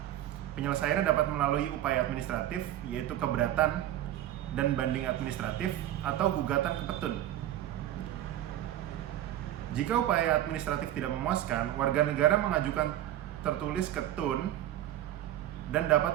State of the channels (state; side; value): quieter; left; 12.8 dB